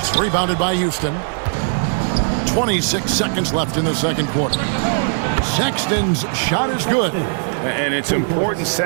rebounded by Houston. 26 seconds left in the second quarter. Sexton's shot is good. And it's important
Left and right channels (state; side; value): silent; left; 64 dB below the other